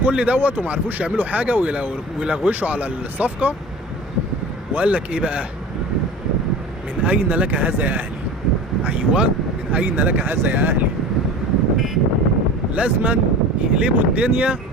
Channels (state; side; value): normal; both; correlation 0.37